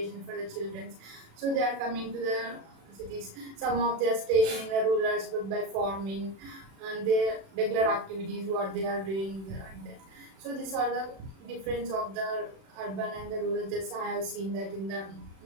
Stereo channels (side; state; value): left; late; 36 ms